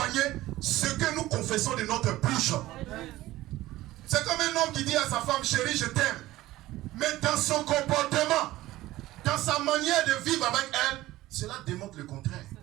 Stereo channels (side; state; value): left; quieter; 16.7 dB